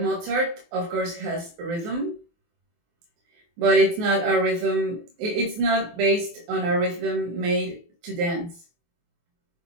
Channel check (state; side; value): late; left; 24 ms